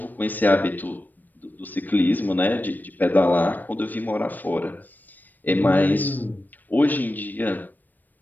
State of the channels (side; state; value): right; late; 0.088 ms